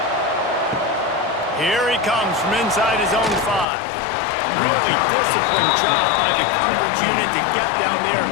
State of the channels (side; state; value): right; drops out; at 3.7 s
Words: Here he comes from inside his own 5. Really disciplined job by the coverage unit to get down there